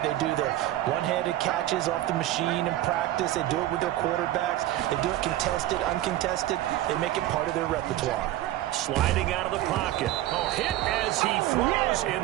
They do the one-handed catches off the machine in practice. They do it with their quarterbacks. They do it contested, uncontested. They make it part of their repertoire. Sliding out of the pocket. Oh, hit as he throws,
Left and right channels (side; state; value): left; quieter; 14.5 dB